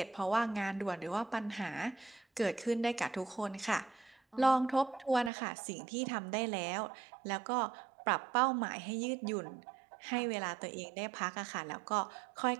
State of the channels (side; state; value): left; drops out; at 5.3 s